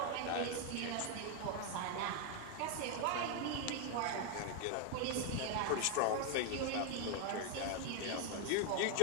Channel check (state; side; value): different; both; correlation 0.01